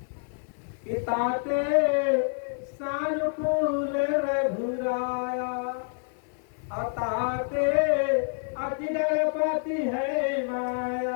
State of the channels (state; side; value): silent; right; digital silence